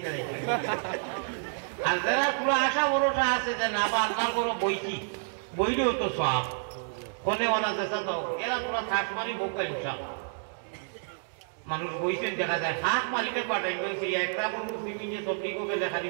দেখি আর যারা তোলা আশা বড়টা আছে যে না বা আল্লাহর বড় বইছি বইলেও তো সব কোনে ওলা দেশা তো এরা তোলা থাক মারি বোকা ইনশাআল্লাহ মানুষ বইছেন দেখা যায় হাত মারিলে পাঠাইবেন সেই একটা মানুষ সিমিনে সবদিকে লেখা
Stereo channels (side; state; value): left; silent; digital silence